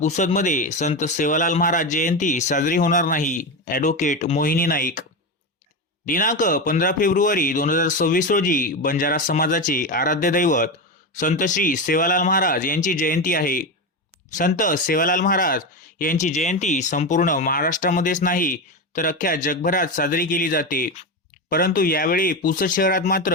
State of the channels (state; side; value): normal; both; correlation 0.16